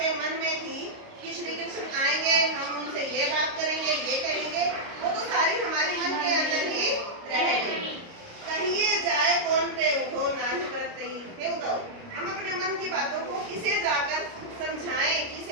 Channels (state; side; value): late; left; 29 ms